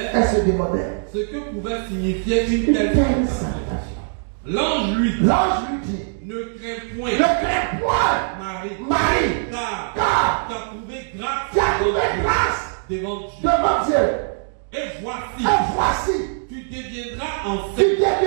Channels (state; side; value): silent; left; digital silence